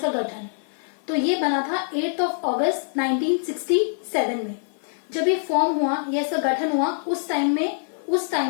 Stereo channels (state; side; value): silent; right; 59 dB below the other